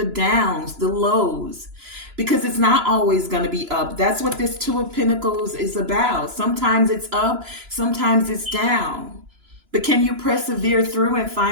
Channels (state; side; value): late; left; 3.0 ms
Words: downs, the lows, because it's not always going to be up. That's what this Two of Pentacles is about. Sometimes it's up, sometimes it's down. But can you persevere through and